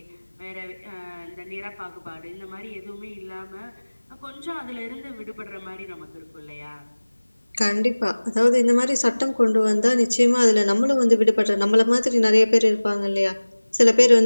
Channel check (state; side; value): inverted; both; correlation -1.00